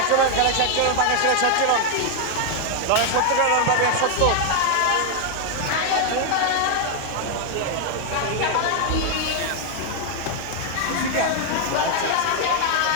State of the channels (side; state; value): both; different; correlation 0.00